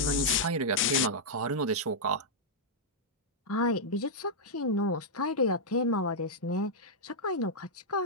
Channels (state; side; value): normal; both; correlation -0.07